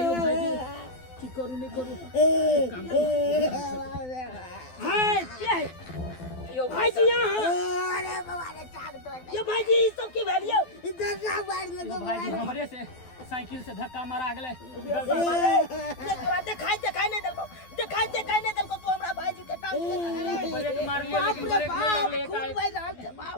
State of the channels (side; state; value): right; late; 12 ms